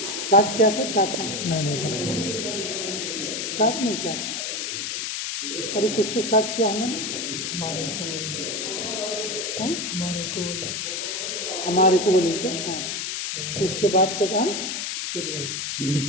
स्टार्ट किया था, क्या था? नहीं स्टार्ट नहीं किया था। अरे कुछ तो स्टार्ट किया होगा ना। हमारे को हमारे को बोलूँ क्या? हाँ, उसके बाद क्या कहा?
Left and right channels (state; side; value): noise; left; hiss, 3 dB below the sound